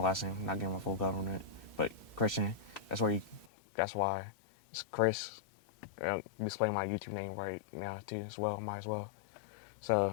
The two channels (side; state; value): right; drops out; at 3.5 s